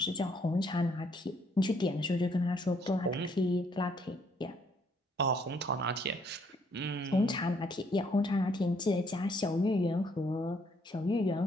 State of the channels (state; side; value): normal; both; correlation 0.68